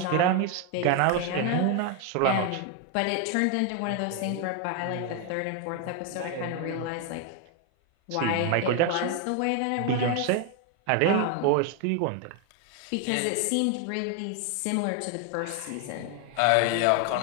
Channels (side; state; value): both; different; correlation 0.01